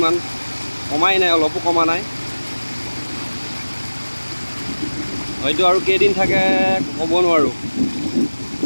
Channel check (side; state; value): both; inverted; correlation -1.00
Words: কমাই নাই, অলপো কমা নাই। হয়তো আৰু কেইদিন থাকে ক'ব নোৱাৰোঁ,